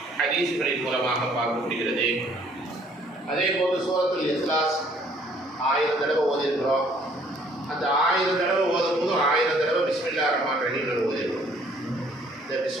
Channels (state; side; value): normal; both; correlation 0.60